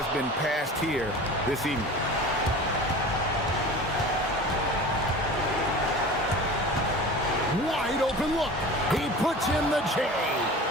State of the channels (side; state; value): both; normal; correlation 0.37